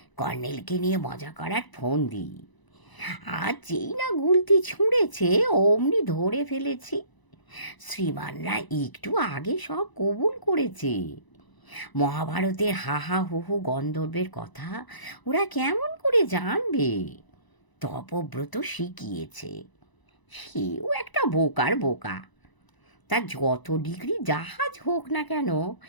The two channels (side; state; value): right; late; 1.0 ms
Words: কর্নেলকে নিয়ে মজা করার ফোন দিই, আর যেই না গুলতি ছুঁড়েছে অমনি ধরে ফেলেছি। শ্রীমানরা একটু আগে সব কবুল করেছে। মহাভারতের হা হা হু হু গন্ধর্বের কথা ওরা কেমন করে জানবে? তপব্রত শিখিয়েছে। সেও একটা বোকার বোকা। তার যত ডিগ্রি জাহাজ হোক না কেন,